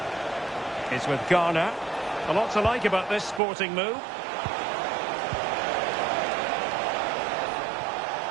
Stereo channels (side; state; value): left; drops out; at 3.4 s